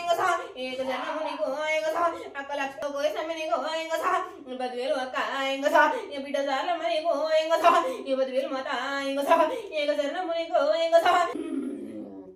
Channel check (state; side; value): identical; both; correlation 1.00